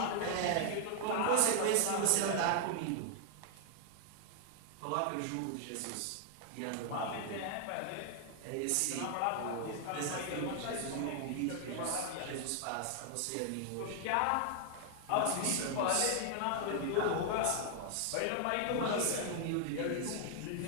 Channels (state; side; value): different; both; correlation 0.00